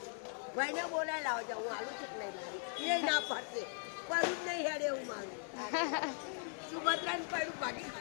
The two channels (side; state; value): right; silent; 52 dB below the other